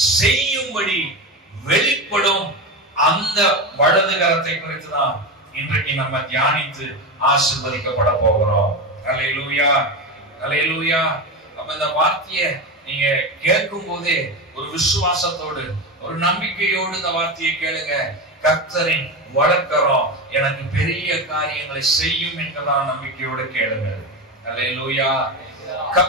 செய்யும்படி வெளிப்படும் அந்த வலதுகரத்தை குறித்துதான் இன்றைக்கு நம்ம தியானித்து ஆசீர்வதிக்கப்பட போகிறோம். அல்லேலூயா, அல்லேலூயா. அப்ப இந்த வார்த்தையை நீங்க கேட்கும் போதே ஒரு விசுவாசத்தோடு, ஒரு நம்பிக்கையோடு இந்த வார்த்தையை கேளுங்க. கர்த்தரின் வலக்கரம் எனக்கு பெரிய காரியங்களை செய்யும் என்கிறதான நம்பிக்கையோடு கேளுங்க. அல்லேலூயா.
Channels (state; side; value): normal; both; correlation 0.19